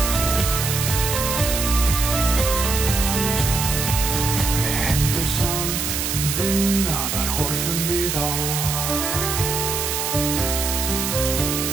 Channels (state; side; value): noise; right; hiss, 2 dB below the sound